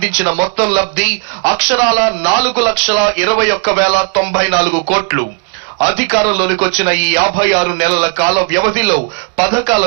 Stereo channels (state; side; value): quieter; left; 35.8 dB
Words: మొత్తం లబ్ధి అక్షరాల 4,21,094 కోట్లు. అధికారంలోనికి వచ్చిన ఈ 56 నెలల కాల వ్యవధిలో పథకాల